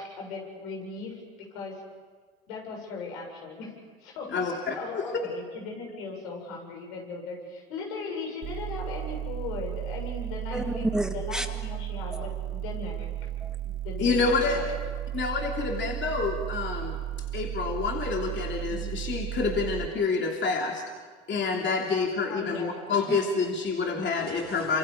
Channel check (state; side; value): normal; both; correlation 0.31